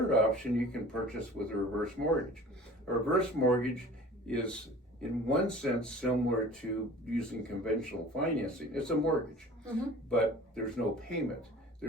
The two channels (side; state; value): both; normal; correlation 0.44